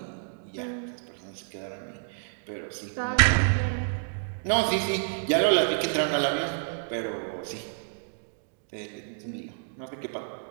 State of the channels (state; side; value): silent; left; digital silence